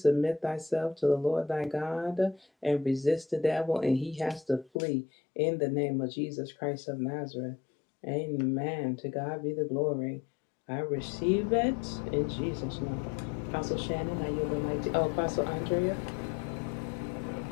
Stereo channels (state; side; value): drops out; right; at 4.7 s